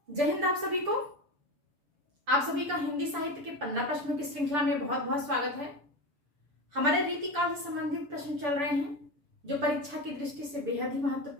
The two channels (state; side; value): late; left; 6.9 ms